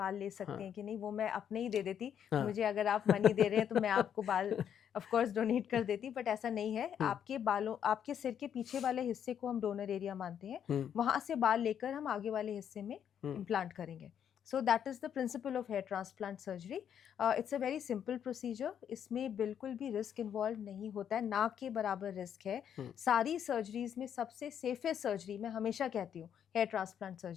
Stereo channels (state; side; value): quieter; right; 8.9 dB